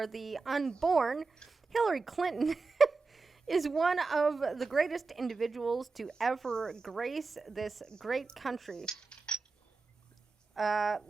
the unborn, Hillary Clinton is one of the greatest individuals to ever grace this great country.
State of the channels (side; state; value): left; quieter; 4.1 dB